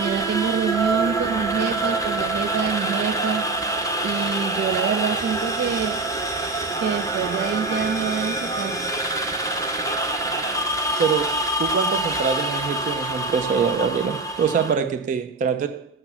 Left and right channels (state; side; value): quieter; left; 3.7 dB